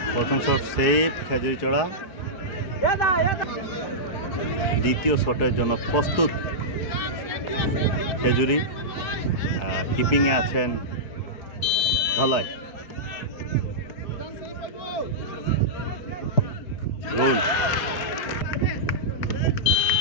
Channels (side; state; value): right; late; 4.3 ms